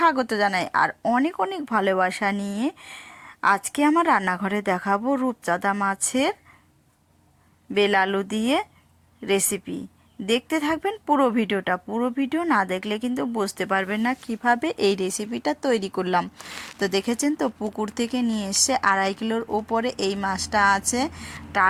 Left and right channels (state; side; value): identical; both; correlation 1.00